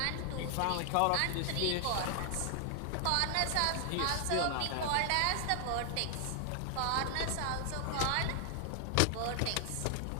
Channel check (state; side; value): different; both; correlation 0.00